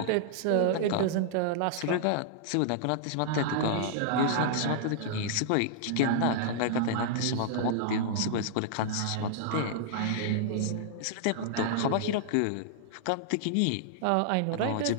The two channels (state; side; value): different; both; correlation -0.01